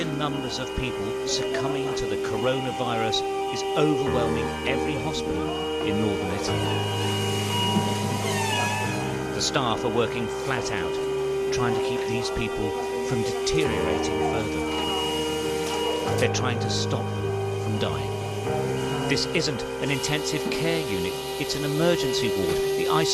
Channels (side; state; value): both; identical; correlation 1.00